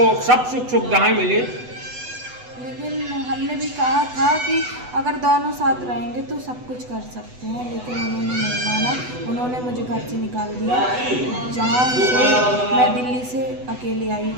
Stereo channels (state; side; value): late; left; 8.0 ms